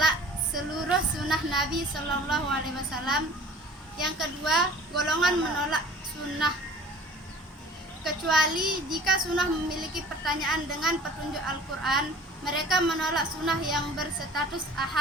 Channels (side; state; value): both; normal; correlation 0.46